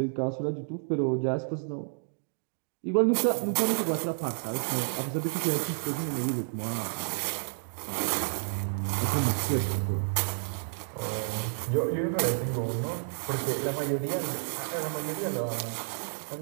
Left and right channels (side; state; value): left; silent; digital silence